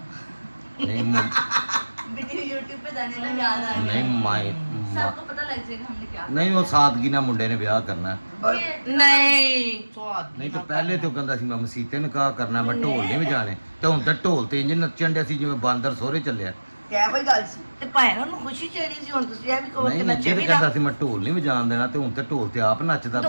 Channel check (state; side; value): inverted; both; correlation -1.00